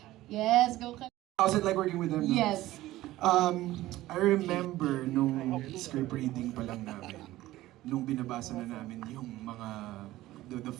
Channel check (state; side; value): quieter; left; 16.2 dB